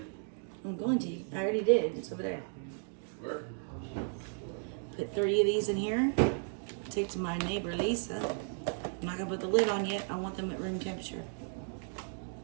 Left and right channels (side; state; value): left; silent; 55 dB below the other